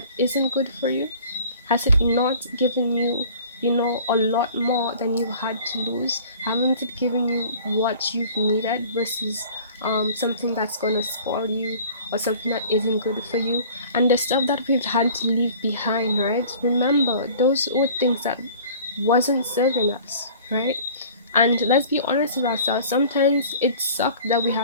isn't good for you? Has it not given you, you know, a lot more than you had to lose? Haven't it given you what you've needed versus something that's gonna spoil you or something that isn't good for you? And the stuff that we've had to leave behind, right? Remember, those were things that wasn't serving us, right? And let's be honest with ourselves. Sometimes it sucked that we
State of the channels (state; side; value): inverted; both; correlation -0.47